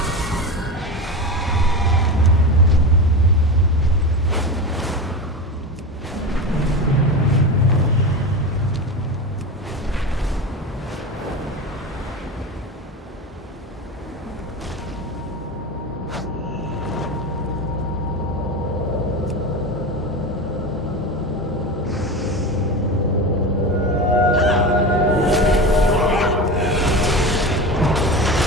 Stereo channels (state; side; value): normal; both; correlation 0.24